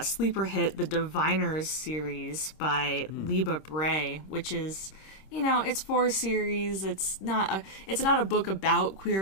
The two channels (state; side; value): late; right; 26 ms